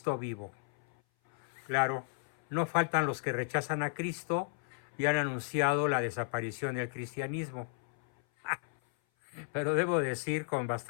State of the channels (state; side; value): silent; right; 55 dB below the other